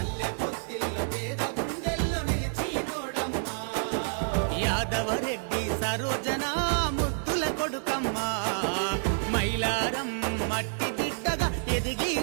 యాదవరెడ్డి సరోజన ముద్దుల కొడుకమ్మా, మైలారం మట్టి బిడ్డగా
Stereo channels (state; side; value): silent; left; digital silence